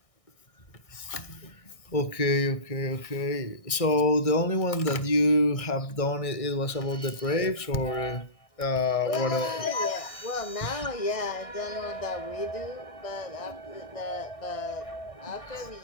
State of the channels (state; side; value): late; right; 1.6 ms